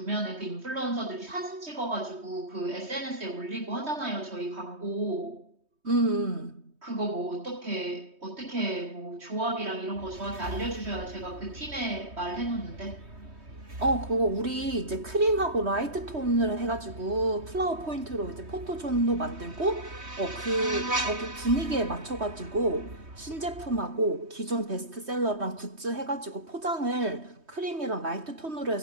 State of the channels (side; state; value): left; late; 3.2 ms